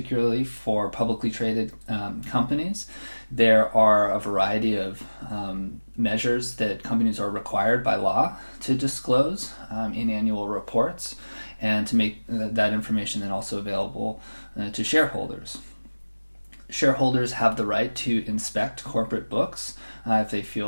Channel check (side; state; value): both; inverted; correlation -1.00